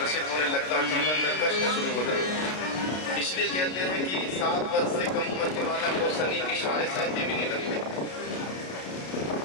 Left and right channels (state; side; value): late; right; 33 ms